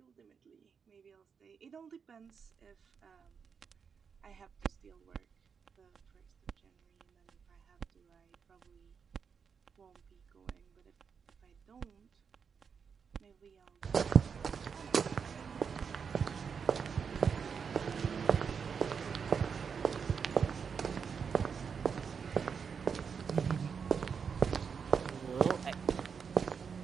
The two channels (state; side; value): quieter; left; 6.3 dB